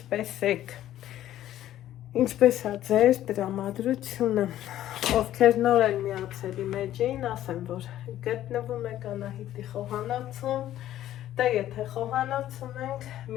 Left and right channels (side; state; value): right; quieter; 12.8 dB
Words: եք, ինչպես է ձեր տրամադրությունը, ովքեր նոր են միացել իմ էջին, ասեմ, որ գտնվում եք Անահիտի խոհանոցում, դե եթե խոհանոցում ենք,